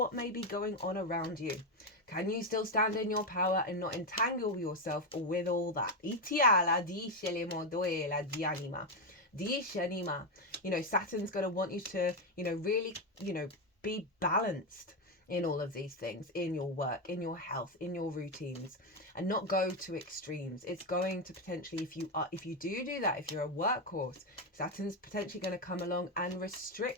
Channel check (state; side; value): normal; both; correlation 0.08